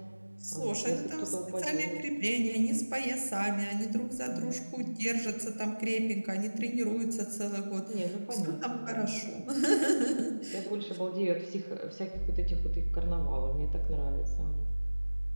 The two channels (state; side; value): inverted; both; correlation -1.00